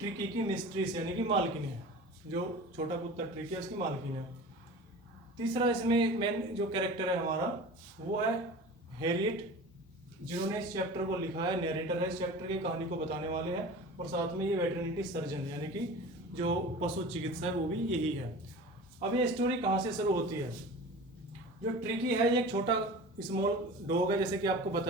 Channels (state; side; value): normal; both; correlation 0.37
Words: की मिस्ट्रेस यानी कि मालकिन है। जो छोटा कुत्ता ट्रिकी है उसकी मालकिन है। तीसरा इसमें मेन जो कैरेक्टर है हमारा वो है हैरियट, जिन्होंने इस चैप्टर को लिखा है, नैरेटर है इस चैप्टर की, कहानी को बताने वाले हैं। और साथ में ये वेटरनिटी सर्जन यानी कि जो पशु चिकित्सा है वो भी यही है। अब ये स्टोरी कहाँ से शुरू होती है। जो ट्रिकी है ये एक छोटा स्मॉल डॉग है जैसे कि आपको